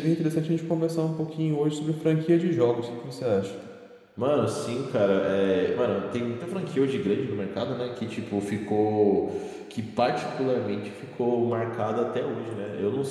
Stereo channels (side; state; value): both; identical; correlation 1.00